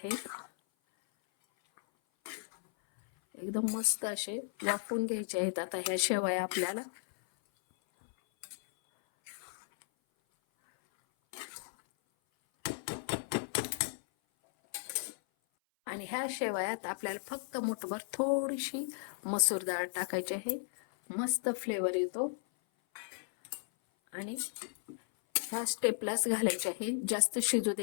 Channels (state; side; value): silent; right; 54 dB below the other